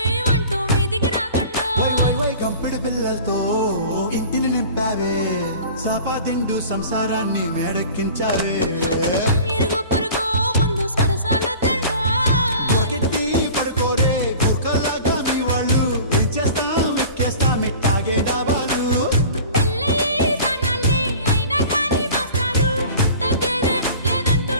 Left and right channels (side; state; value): both; inverted; correlation -0.42